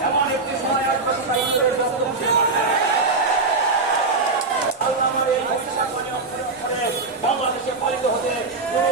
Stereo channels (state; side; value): quieter; left; 3.7 dB